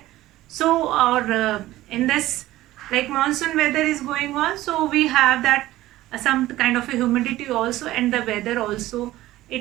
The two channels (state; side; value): quieter; left; 16.0 dB